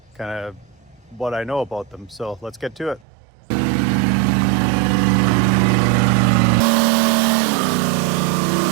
kind of what I know about them. So let's get to it.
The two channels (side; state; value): left; drops out; at 3.1 s